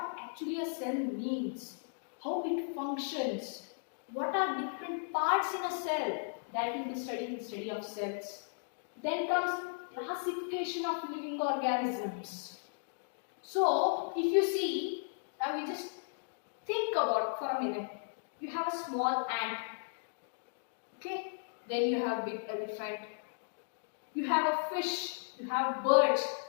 actually a cell means, how it functions, what are different parts in a cell, that will be studied in study of cells. Then comes classification of living organisms. So, if you see, now we just think about for a minute. You have a small ant. Okay? Then you have big elephant. You have a fish. You have birds.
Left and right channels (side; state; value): right; silent; digital silence